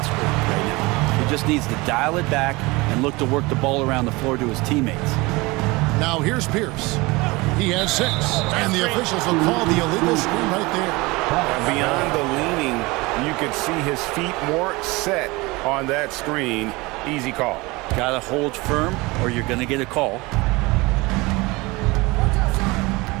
right now. He just needs to dial it back and look to work the ball around the floor to his teammates. Now here's Pierce. He has 6, and the officials will call the illegal screen right there. Beyond the leaning, you could see his feet more set on that screen. Easy call. Gotta hold firm or you're gonna get a call.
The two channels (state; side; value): quieter; left; 23.4 dB